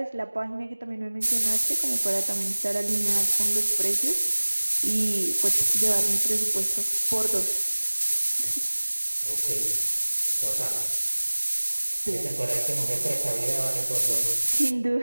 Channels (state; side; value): inverted; both; correlation -1.00